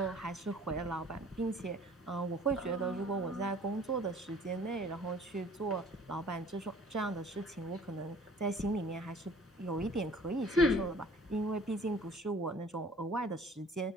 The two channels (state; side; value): normal; both; correlation 0.51